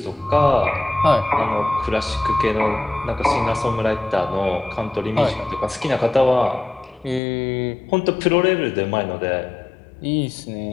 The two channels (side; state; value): right; drops out; at 7.2 s